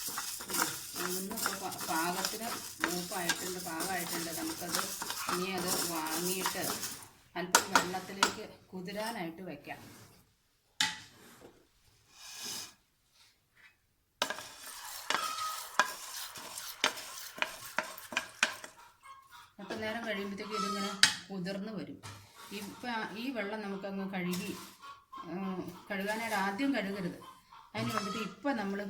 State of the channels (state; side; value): identical; both; correlation 1.00